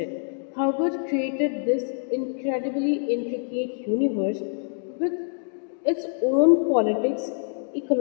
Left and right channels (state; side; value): silent; right; digital silence